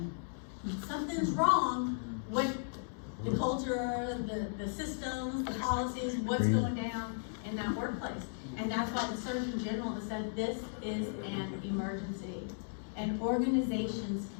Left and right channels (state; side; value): silent; right; digital silence